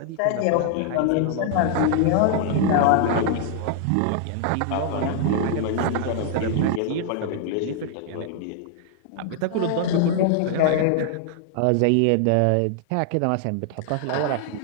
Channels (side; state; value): both; different; correlation 0.00